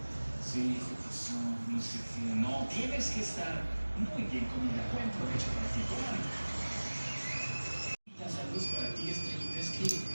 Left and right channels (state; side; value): inverted; both; correlation -1.00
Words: Sí, ¿qué pasó? No sé qué. No, tienes que estar muy bien comida. Buen provecho para ti, comadre. Saludos para ti, Estrellita. Es que,